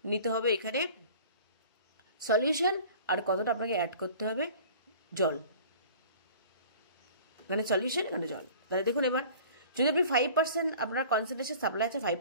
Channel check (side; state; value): both; inverted; correlation -0.45